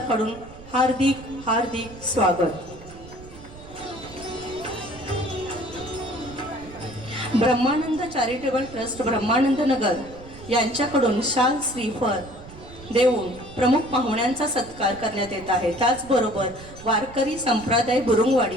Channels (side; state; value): right; noise; rumble, 17 dB below the sound